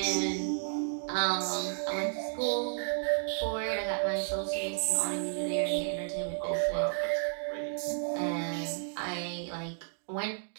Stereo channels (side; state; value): left; silent; digital silence